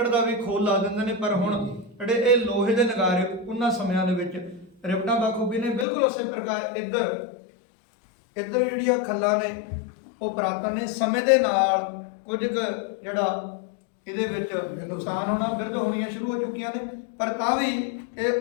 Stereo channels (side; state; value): right; drops out; at 5.9 s